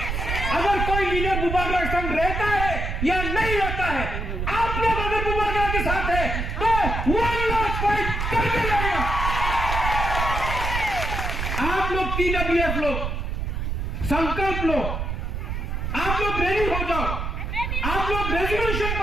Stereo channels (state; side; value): noise; right; rumble, 2 dB below the sound